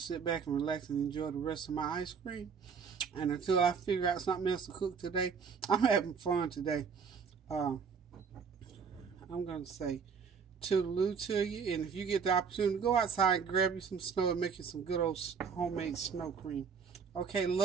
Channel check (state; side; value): quieter; left; 6.1 dB